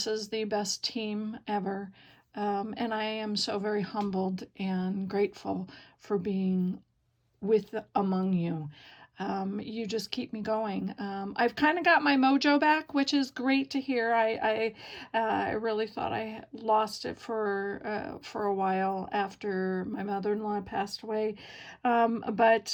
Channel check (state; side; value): identical; both; correlation 1.00